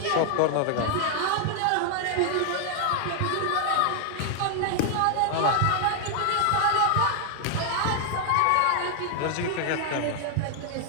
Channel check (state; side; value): different; both; correlation 0.00